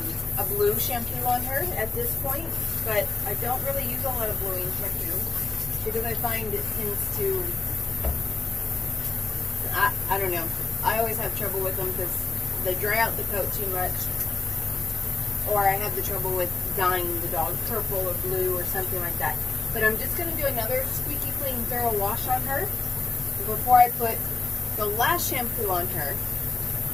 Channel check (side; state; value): right; quieter; 4.0 dB